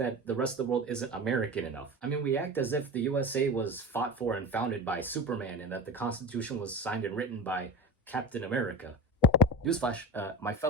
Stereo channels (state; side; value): normal; both; correlation 0.29